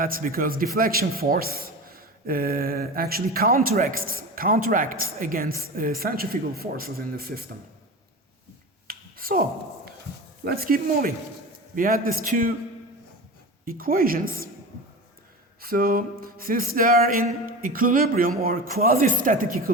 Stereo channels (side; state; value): both; normal; correlation 0.29